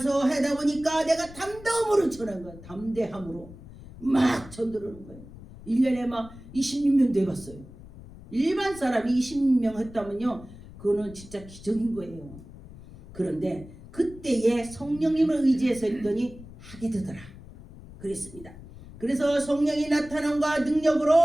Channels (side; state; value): left; noise; rumble, 17 dB below the sound